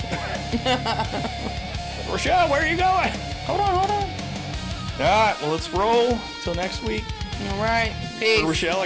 Rashell, where are you going? Hold on. All right, well, let's roll till next week. All right. Peace. For Rashell,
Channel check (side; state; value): both; identical; correlation 1.00